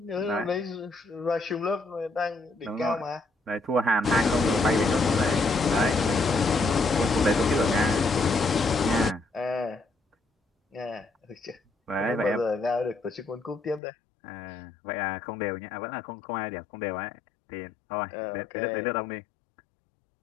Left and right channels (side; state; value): right; drops out; at 13.8 s